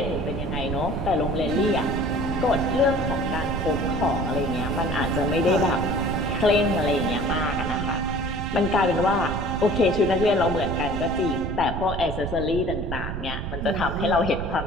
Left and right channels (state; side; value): noise; right; rumble, 5 dB below the sound